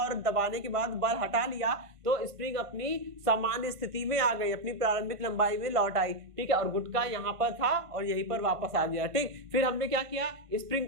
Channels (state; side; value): late; left; 1.5 ms